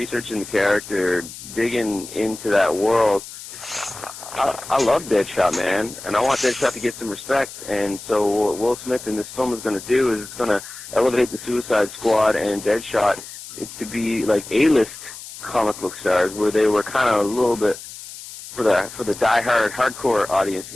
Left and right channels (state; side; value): noise; left; hiss, 14 dB below the sound